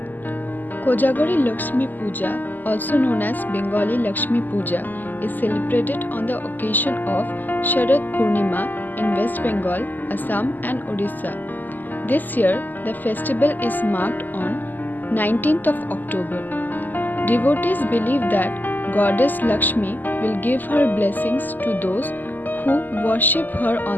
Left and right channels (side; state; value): right; late; 0.086 ms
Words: Kojagori Lakshmi Puja, also known as Bengali Lakshmi Puja, is celebrated on the occasion of Sharad Purnima in West Bengal, Assam and Odisha. This year, the festival is marked on 19th of October. Devotees believe that Goddess Lakshmi will give her blessings to those who worship her